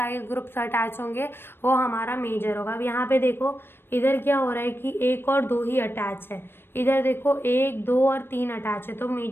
ग्रुप्स अटैच होंगे वो हमारा मेजर होगा। अब यहाँ पे देखो इधर क्या हो रहा है कि 1 और 2 ही अटैच है, इधर देखो 1, 2 और 3 अटैच है, तो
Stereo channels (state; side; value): late; right; 0.10 ms